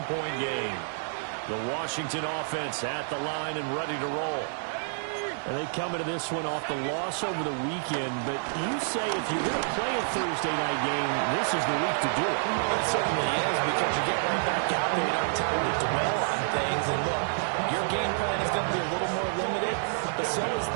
game. The Washington offense at the line and ready to roll. And they come into this one off the loss over the weekend, but you say if you're going to play a Thursday night game, this is the week to do it. It certainly is, because you get right back out there. You don't have time to dwell on things. And look, your game plan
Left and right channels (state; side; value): silent; left; digital silence